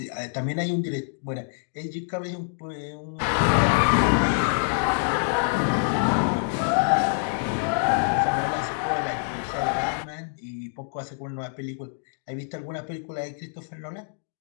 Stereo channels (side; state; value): right; silent; digital silence